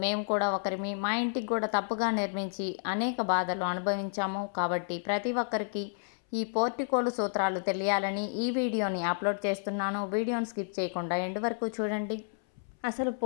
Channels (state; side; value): silent; right; 57 dB below the other